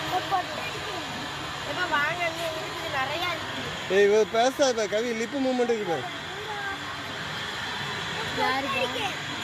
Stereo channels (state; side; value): identical; both; correlation 1.00